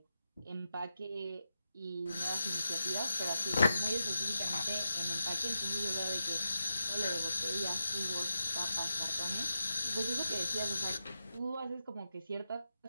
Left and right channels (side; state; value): both; inverted; correlation -0.88